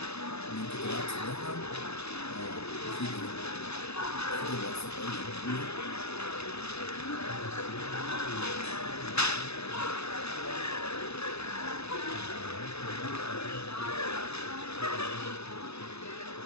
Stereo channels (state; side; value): late; right; 0.79 ms